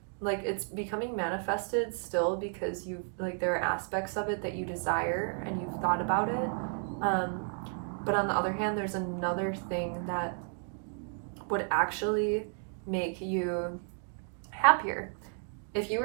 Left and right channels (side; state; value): left; silent; 56 dB below the other